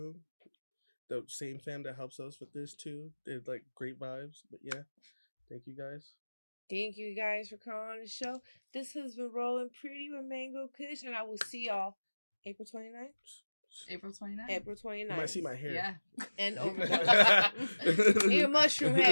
The same fam that helps us with this too. They're like great vibes. But yeah, thank you guys. Thank you guys for coming on the show. This has been Rollin Pretty with Mango Kush, and I will see y'all April 29th. April 29th. April 29th. You might see my hair. Yeah. And Overdose. Need a mushroom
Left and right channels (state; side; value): inverted; both; correlation -1.00